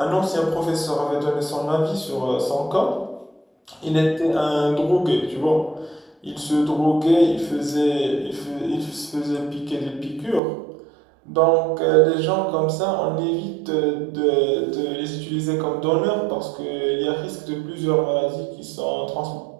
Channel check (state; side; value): drops out; left; at 10.4 s